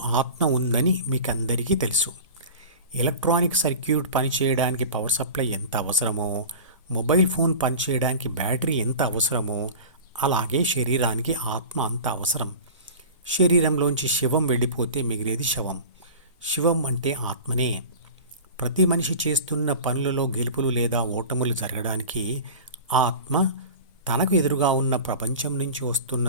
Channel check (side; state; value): both; inverted; correlation -0.35